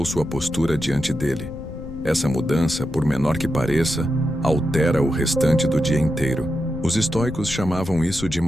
sua postura diante dele. Essa mudança, por menor que pareça, altera o restante do dia inteiro. Os estoicos chamavam isso de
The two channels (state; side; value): noise; left; rumble, 11 dB below the sound